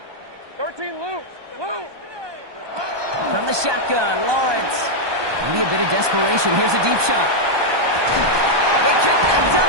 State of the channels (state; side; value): late; left; 1.2 ms